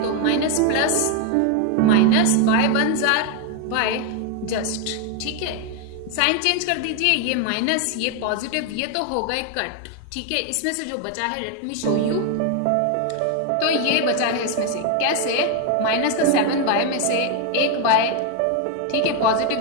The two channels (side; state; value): both; different; correlation 0.01